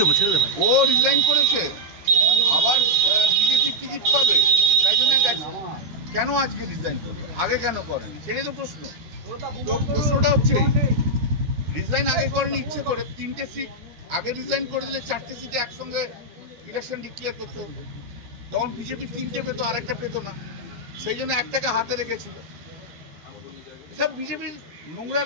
দেবো, ছেড়ে দে ভাই। ও রিজাইন করেছে, আবার বিজেপি টিকিট পাবে, তাই জন্য গেছে। কেন আজকে রিজাইন করবে? আগে কেন করেনি? সেটাই তো প্রশ্ন। তো প্রশ্নটা হচ্ছে রিজাইন আগে করেনি ইচ্ছে করে। 3টে সিট আগে রিজাইন করে দিলে 4টে সিটে একসঙ্গে ইলেকশন ডিক্লেয়ার করতে হতো, তখন বিজেপি 3টে পেতো, আর একটা পেতো না। সেই জন্য একটাকে হাতে রেখেছিল। সব বিজেপির নোংরা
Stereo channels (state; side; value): late; left; 13 ms